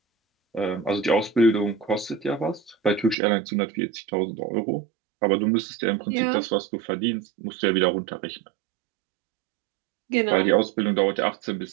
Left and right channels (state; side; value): drops out; left; at 3.2 s